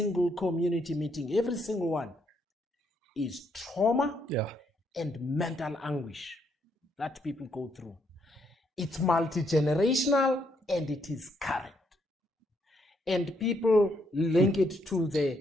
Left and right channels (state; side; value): normal; both; correlation 0.74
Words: community meeting, every single one, is trauma and mental anguish that people go through. It's multi-generational and it is current. And people link it to the